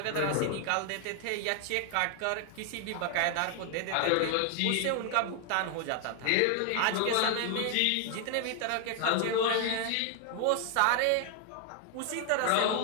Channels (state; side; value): different; both; correlation 0.00